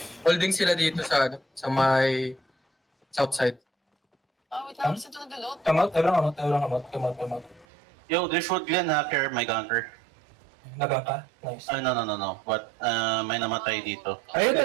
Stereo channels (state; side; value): drops out; left; at 7.7 s